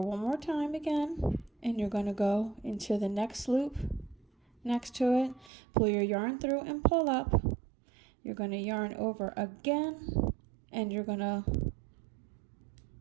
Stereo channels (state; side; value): drops out; left; at 5.5 s